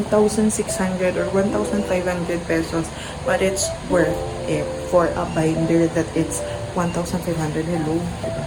or 1,500 pesos. But it's worth it for a binder that it's 1,500. Hello, diba?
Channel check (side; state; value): both; identical; correlation 1.00